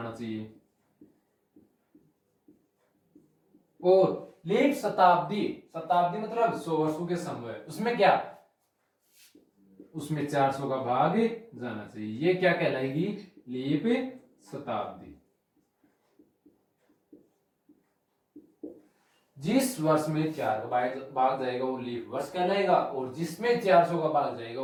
चाहिए। और लीप शताब्दी, शताब्दी मतलब 100 वर्षों के समूह, उसमें क्या, उसमें 400 का भाग जाना चाहिए, ये क्या कहलाएगी लीप शताब्दी। जिस वर्ष में 4 का भाग जाएगा वो लीप वर्ष कहलाएगा, और जिसमें 400 का भाग जाएगा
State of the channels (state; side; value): identical; both; correlation 1.00